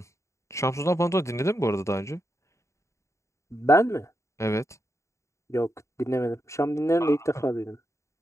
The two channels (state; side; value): late; right; 0.14 ms